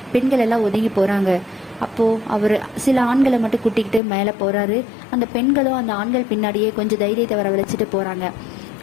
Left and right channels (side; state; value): right; drops out; at 4.0 s